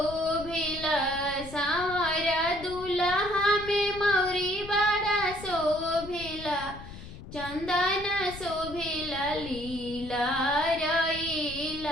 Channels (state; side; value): noise; left; rumble, 14 dB below the sound